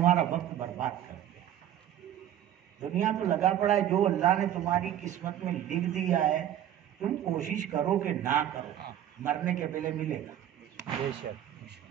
وقت برباد کرتے ہیں۔ دنیا تو لگا پڑا ہے، جو اللہ نے تمہاری قسمت میں لکھ دیا ہے تم کوشش کرو کہ نہ کرو، مرنے کے پہلے ملے گا بے شک،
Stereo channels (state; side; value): quieter; left; 11.1 dB